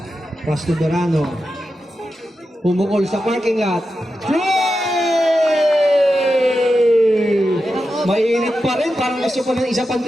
Pass to Dorano. Pumukol sa parking lot. Mainit pa rin, parang gusto ko ng isa pang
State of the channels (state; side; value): normal; both; correlation 0.90